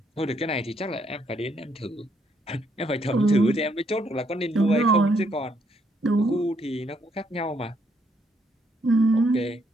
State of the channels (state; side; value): normal; both; correlation 0.72